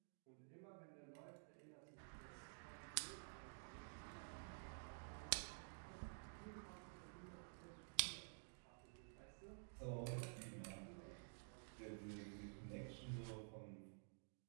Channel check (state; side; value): silent; left; digital silence